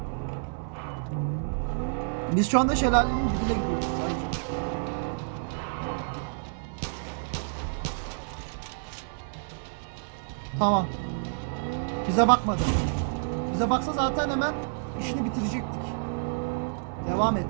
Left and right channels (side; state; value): left; silent; 59 dB below the other